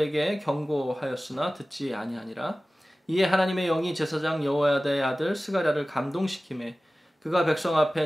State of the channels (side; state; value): both; normal; correlation 0.97